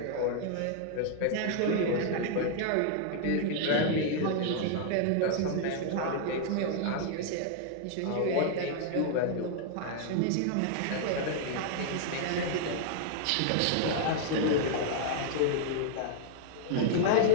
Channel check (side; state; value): both; different; correlation 0.00